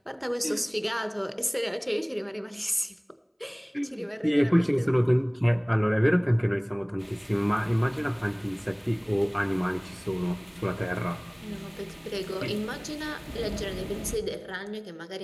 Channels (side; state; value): both; identical; correlation 1.00